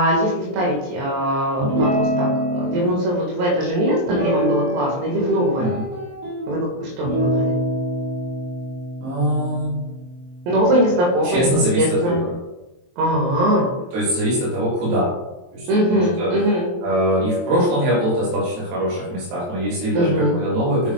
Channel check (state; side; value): late; left; 23 ms